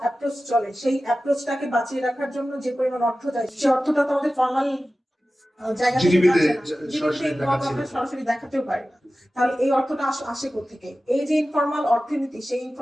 অ্যাপ্রোচ চলে, সেই অ্যাপ্রোচটাকে বাঁচিয়ে রাখার জন্য যে পরিমাণ অর্থ যায়, সেই অর্থটা তো আমাদের ফর্মাল জায়গা থেকে GDP তে যাচ্ছে না। সরাসরি GDP দেখাচ্ছে না। আমরা সরাসরি দেখাতেও পারি না। তাহলে এই অর্থটা আসে কোত্থেকে? এই যে ইনফর্মাল অর্থনীতি, সেই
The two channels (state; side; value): normal; both; correlation 0.95